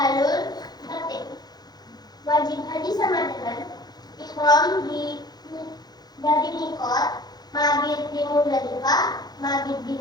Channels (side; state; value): right; late; 0.19 ms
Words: tertib. Wajib haji sama dengan ihram dari miqat, mabit di Muzdalifah, mabit di